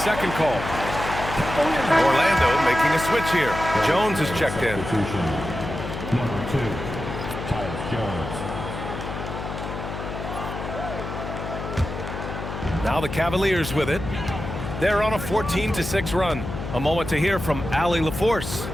call. Orlando making a switch here. Jones is checked in. Number 2, Jones. Now the Cavaliers with it. They're on a 14-6 run. A moment to hear from Allie LaForce.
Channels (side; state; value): left; noise; hum, 7 dB below the sound